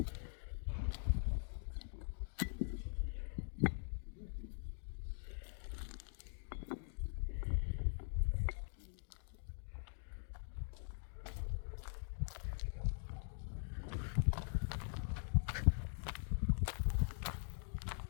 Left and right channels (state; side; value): silent; right; digital silence